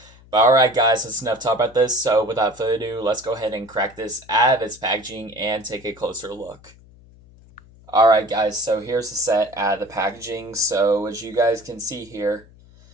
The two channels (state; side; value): noise; left; hum, 25 dB below the sound